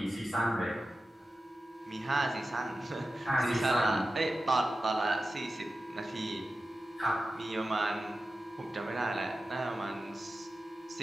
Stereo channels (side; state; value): both; normal; correlation 0.93